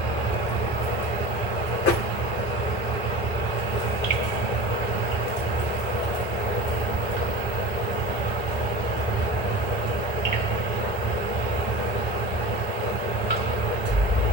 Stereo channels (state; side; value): normal; both; correlation 0.33